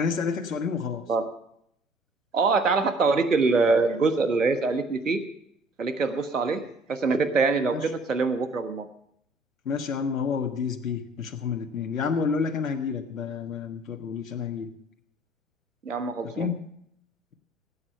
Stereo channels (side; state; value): both; normal; correlation 0.56